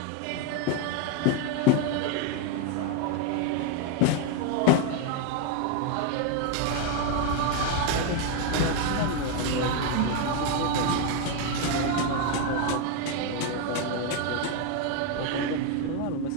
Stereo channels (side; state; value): both; different; correlation 0.01